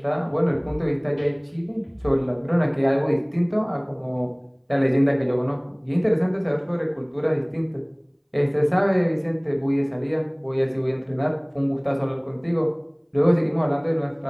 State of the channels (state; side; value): identical; both; correlation 1.00